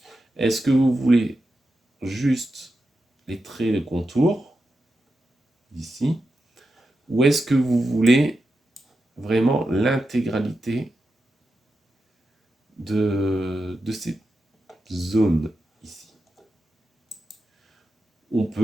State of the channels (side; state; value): both; normal; correlation 0.89